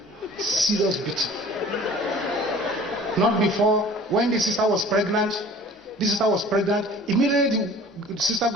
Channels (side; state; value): both; normal; correlation 0.47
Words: serious beating. Not before, when the sister was pregnant, immediately the sister